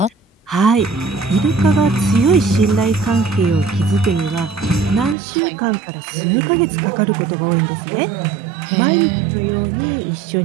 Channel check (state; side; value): drops out; left; at 5.2 s